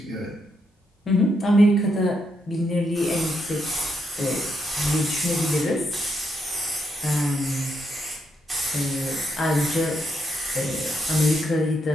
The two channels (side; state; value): both; normal; correlation 0.79